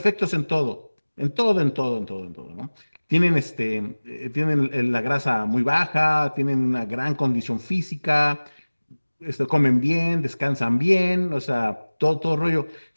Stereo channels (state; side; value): inverted; both; correlation -1.00